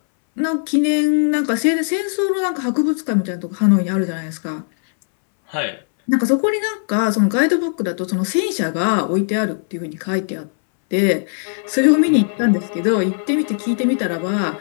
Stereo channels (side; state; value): right; silent; 67 dB below the other